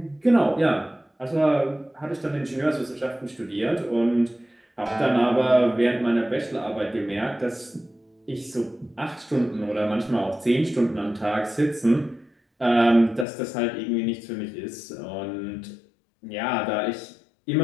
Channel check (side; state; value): right; drops out; at 13.2 s